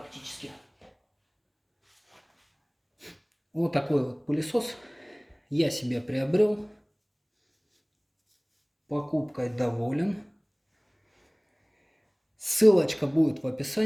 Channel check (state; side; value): identical; both; correlation 1.00